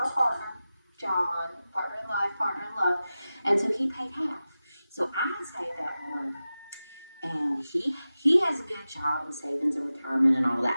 partner, John, partner in life, partner in love, and so he paid half. So I had saved up money, and he has a good job in savings and retirement and all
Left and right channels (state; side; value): inverted; both; correlation -0.94